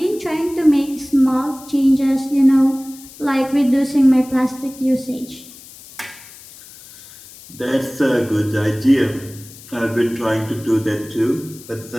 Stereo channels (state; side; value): noise; left; hiss, 19 dB below the sound